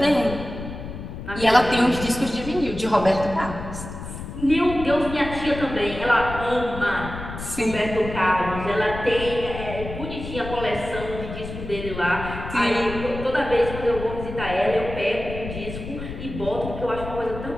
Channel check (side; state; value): left; noise; rumble, 9 dB below the sound